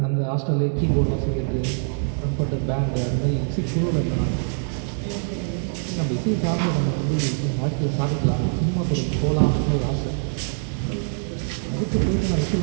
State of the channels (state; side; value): silent; left; 63 dB below the other